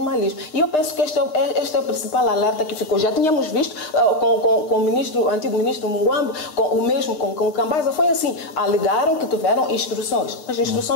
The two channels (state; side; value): late; right; 9.4 ms